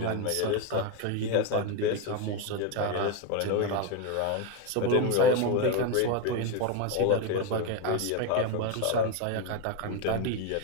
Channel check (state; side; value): different; both; correlation 0.02